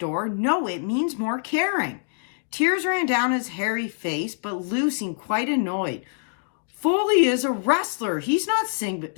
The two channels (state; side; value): silent; right; digital silence